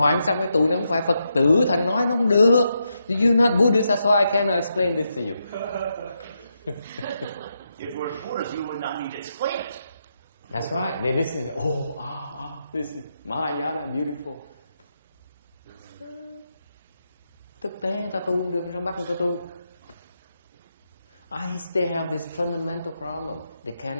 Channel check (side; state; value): both; inverted; correlation -0.83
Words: sao cái tụi nó không phải Phật tử, thành nói nó không được. You're not Buddhist, that's why I cannot explain this to you. If we're Buddhists, you would not need to explain it. That's right. They listen. this Mahayana beautiful. Thực tế người ta tu không được, trong bắt người ta tu. They have this fundamental problem. They